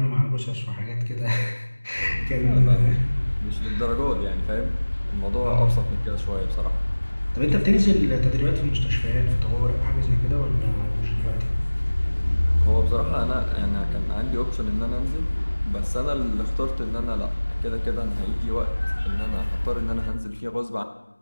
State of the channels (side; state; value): both; inverted; correlation -1.00